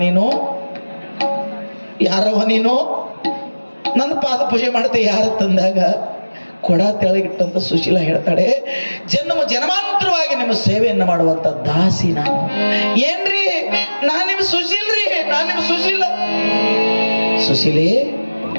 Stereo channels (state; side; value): inverted; both; correlation -1.00